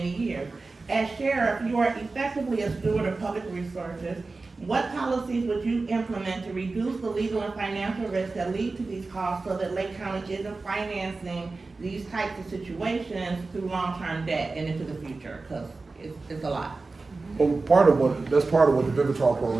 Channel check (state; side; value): quieter; left; 3.7 dB